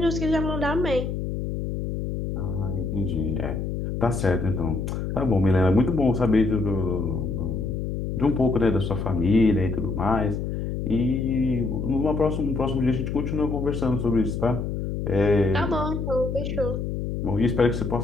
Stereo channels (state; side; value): noise; left; hum, 3 dB below the sound